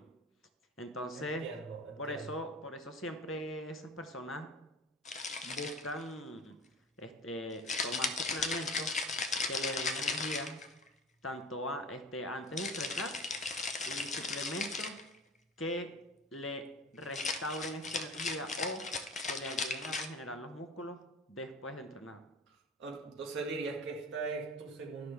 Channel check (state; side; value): normal; both; correlation 0.36